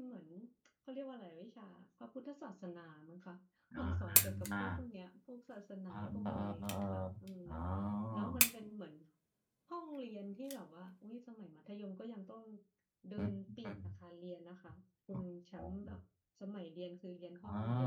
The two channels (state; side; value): identical; both; correlation 1.00